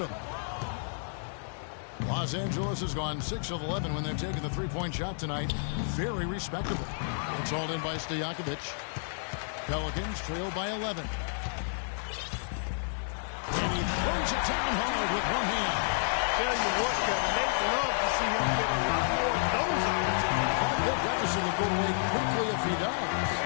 Los Angeles has gone 6 of 11 when they've taken the three-point shot tonight. Very respectable. It's hauled in by Stojakovic. Pelicans trail by 11. And he throws it down hard with one hand. Tell you what, Kevin, they'd love to see him get a lot more of those opportunities. That deficit will go away quickly if he does.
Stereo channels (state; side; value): silent; right; digital silence